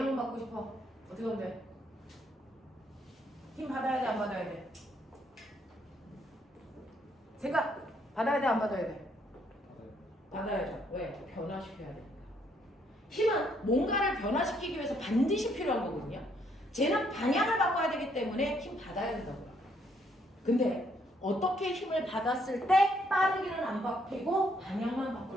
바꾸고 싶어. 어떻게 하면 돼? 힘 받아야 돼, 안 받아야 돼? 생각 받아야 돼, 안 받아야 돼? 받아야죠. 왜? 변화시켜야 되니까. 힘은 뭔가를 변화시키기 위해서 반드시 필요한 거거든요. 쟤는 방향을 바꿔야 되기 때문에 힘 받아야 된다고요. 근데 어떻게 힘을 받았을 때 빠르기는 안 바뀌고 방향만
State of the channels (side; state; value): both; normal; correlation 0.70